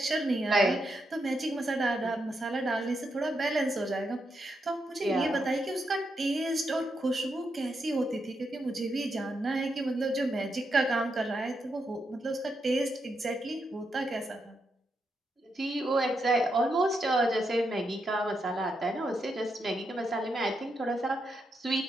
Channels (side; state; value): both; normal; correlation 0.83